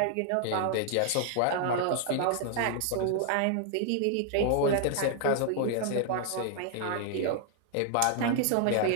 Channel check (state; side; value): different; both; correlation 0.00